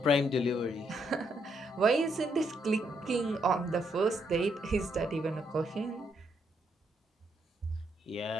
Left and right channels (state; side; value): normal; both; correlation 0.76